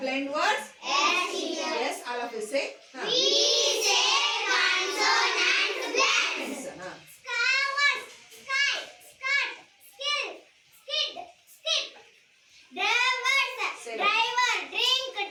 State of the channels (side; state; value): both; identical; correlation 1.00